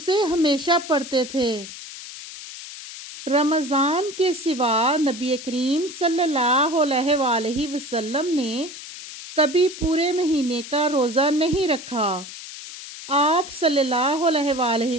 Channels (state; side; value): noise; left; hiss, 12 dB below the sound